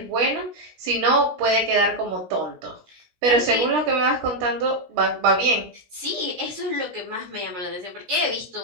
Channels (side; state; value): left; late; 17 ms